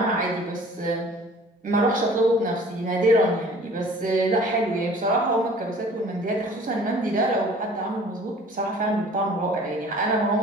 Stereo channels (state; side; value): normal; both; correlation 0.49